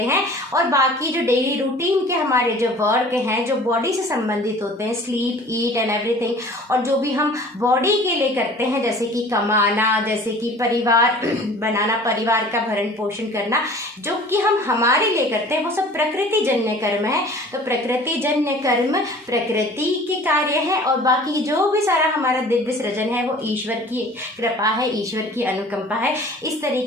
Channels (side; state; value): both; normal; correlation 0.46